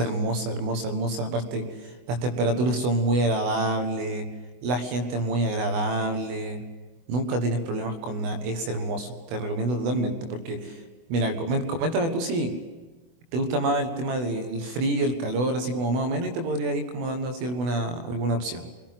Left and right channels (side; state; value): left; late; 24 ms